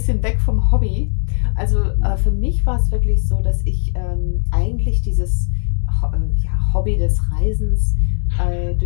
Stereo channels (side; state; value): right; silent; digital silence